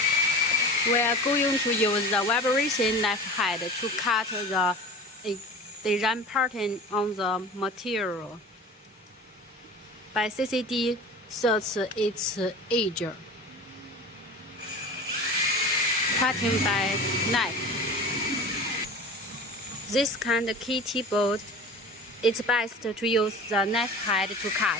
We are going to use the vibration knife head to cut the design pattern on the material. By CCD sets its edge. Cutting by knife. This kind of kitty board, it's best to use the knife head to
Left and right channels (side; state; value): both; normal; correlation 0.36